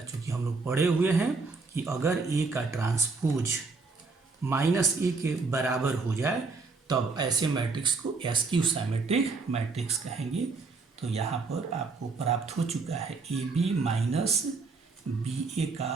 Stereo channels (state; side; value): quieter; left; 4.1 dB